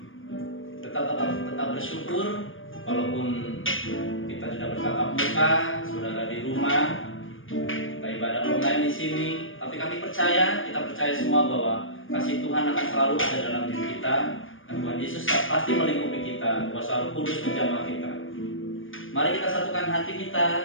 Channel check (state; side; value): late; right; 0.58 ms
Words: Tetap bersyukur walaupun kita tidak bertatap muka, saudara di rumah, kita ibadah online di sini. Tapi kita percaya semua bahwa kasih Tuhan akan selalu ada dalam diri kita, dan Tuhan Yesus pasti melingkupi kita, kuasa Roh Kudus menjamah kita. Mari kita satukan hati